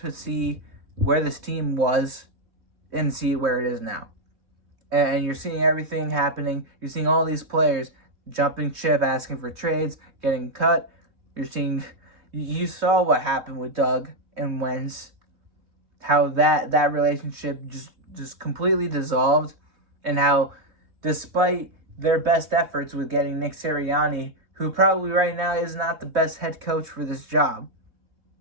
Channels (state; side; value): late; left; 3.2 ms